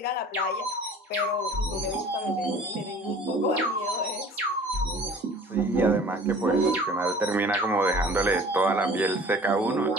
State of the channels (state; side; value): normal; both; correlation 0.47